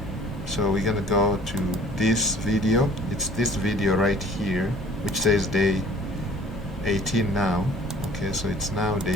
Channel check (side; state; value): both; normal; correlation 0.51